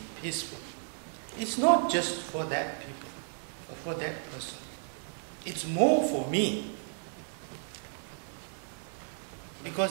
peaceful, it's not just for that people or for that person. It's more for me.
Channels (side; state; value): left; silent; 55 dB below the other